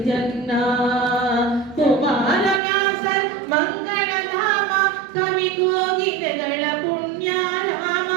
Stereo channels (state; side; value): drops out; left; at 2.6 s